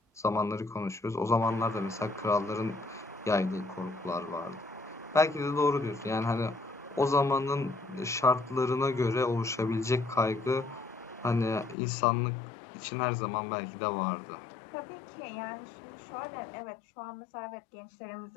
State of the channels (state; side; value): drops out; right; at 11.8 s